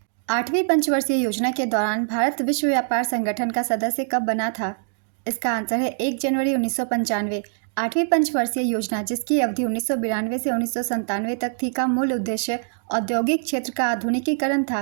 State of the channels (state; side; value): silent; left; digital silence